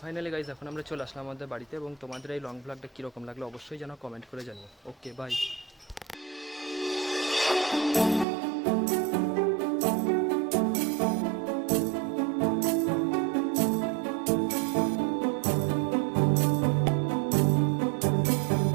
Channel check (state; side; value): drops out; left; at 8.2 s